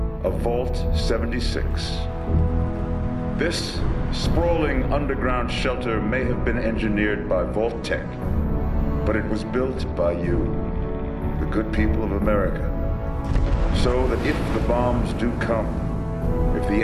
of Vault 76. This sprawling underground shelter may have been engineered by Vault Tech, but it was built by you, the good people of America, so that if the bombs do come, if the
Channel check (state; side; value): identical; both; correlation 1.00